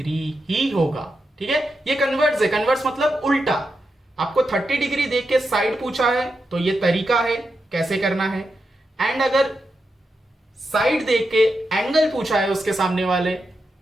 ही होगा। ठीक है, ये कन्वर्स है, कन्वर्स मतलब उल्टा। आपको 30 डिग्री देख के साइड पूछा है तो ये तरीका है कैसे करना है, एंड अगर साइड देख के एंगल पूछा है उसके सामने वाले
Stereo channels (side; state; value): both; normal; correlation 0.87